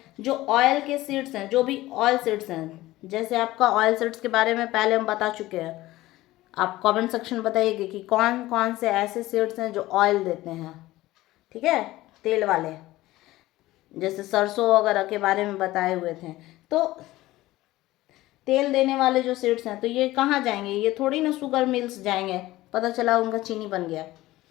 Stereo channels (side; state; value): right; quieter; 17.2 dB